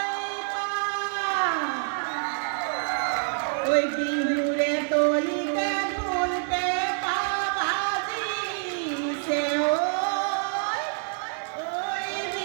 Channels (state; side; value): silent; left; 60 dB below the other